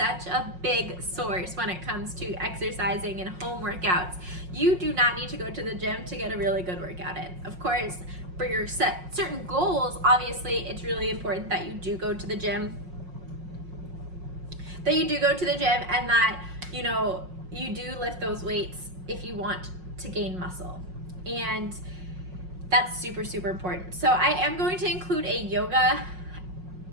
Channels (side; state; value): left; late; 5.5 ms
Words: a big source when it comes to exercising and home workouts. You do not need to go to the gym to get a really good workout in. Of course, for your certain goals, obviously it's really important that you do go to the gym, and that you do lift those weights if you want to gain muscle. And that's super, super important. So I am going to include a yoga,